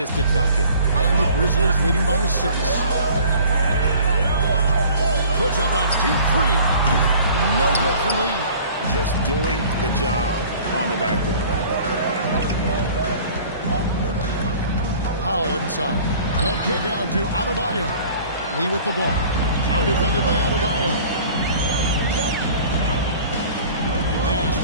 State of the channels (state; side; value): inverted; both; correlation -0.48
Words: bucket. And the Grizzlies leading by 6. Puts up a deep 3. No good from Lee. Just doing the job on the backboard. Powell inside. The kick out to Adebayo. Lee with the ball. Now defended by Adebayo. Pass